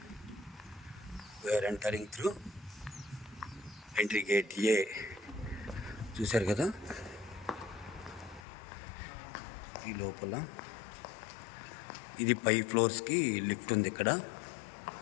We're entering through entry gate A. చూశారు కదా, ఈ లోపల ఇది పై ఫ్లోర్స్కి లిఫ్ట్ ఉంది. ఇక్కడ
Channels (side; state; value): right; drops out; at 8.4 s